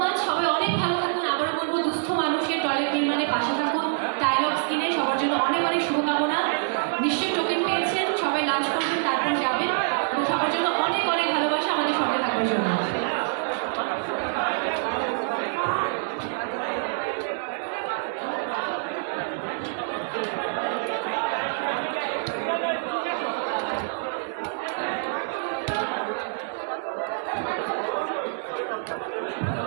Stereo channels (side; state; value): left; silent; 61 dB below the other